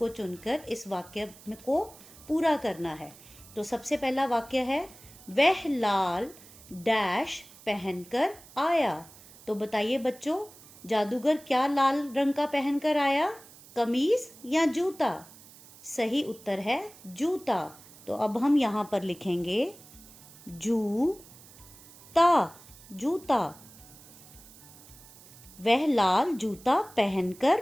चुनकर इस वाक्य को पूरा करना है। तो सबसे पहला वाक्य है, वह लाल डैश पहनकर आया। तो बताइए बच्चों, जादूगर क्या लाल रंग का पहनकर आया? कमीज या जूता? सही उत्तर है जूता। तो अब हम यहाँ पर लिखेंगे जूता, जूता। वह लाल जूता पहनकर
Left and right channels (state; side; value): noise; right; hiss, 21 dB below the sound